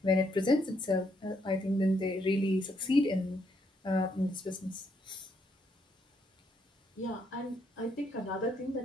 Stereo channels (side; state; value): both; normal; correlation 0.74